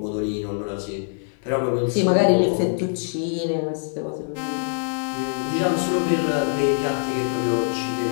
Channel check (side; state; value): right; silent; digital silence